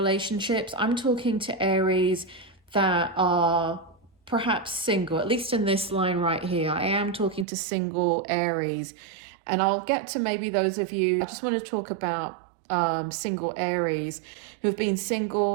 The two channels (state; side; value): drops out; left; at 7.5 s